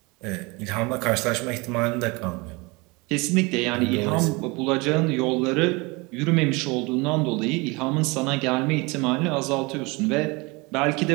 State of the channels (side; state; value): left; quieter; 26.1 dB